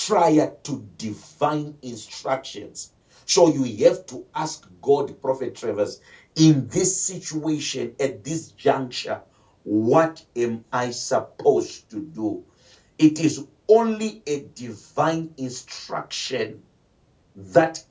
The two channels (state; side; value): identical; both; correlation 1.00